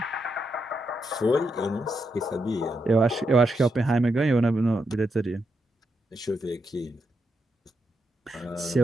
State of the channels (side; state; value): both; normal; correlation 0.83